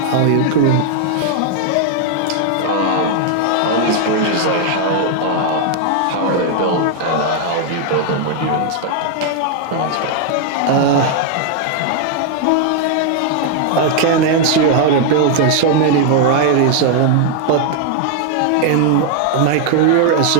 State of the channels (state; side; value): different; both; correlation 0.00